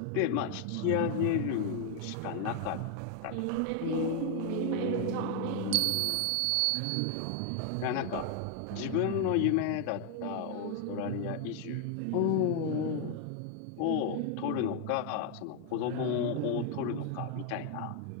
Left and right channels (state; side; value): different; both; correlation 0.00